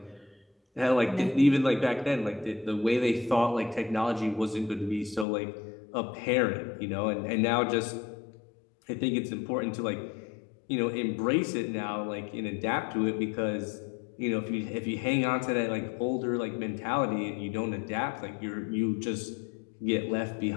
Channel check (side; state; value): right; drops out; at 5.2 s